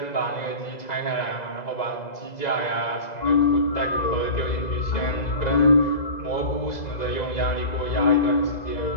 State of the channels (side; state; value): right; late; 2.0 ms